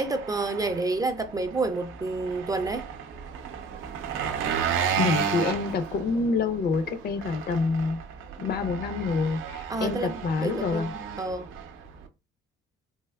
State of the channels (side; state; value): both; normal; correlation 0.49